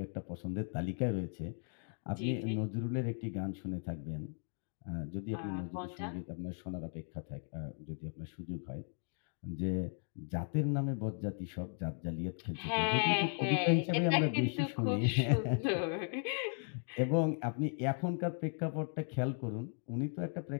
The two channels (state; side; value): silent; right; 53 dB below the other